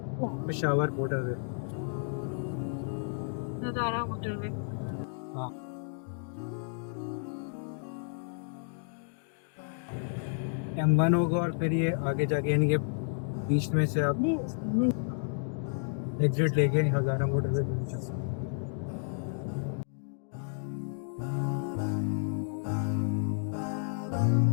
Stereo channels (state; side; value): silent; right; digital silence